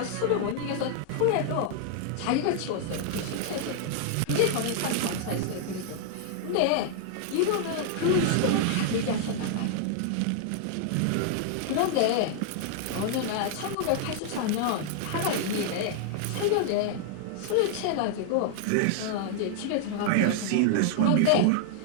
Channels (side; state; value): both; different; correlation 0.00